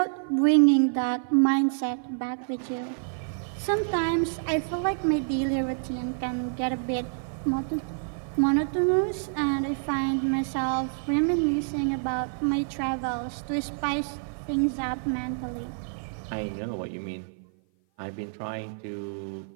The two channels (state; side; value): silent; left; 55 dB below the other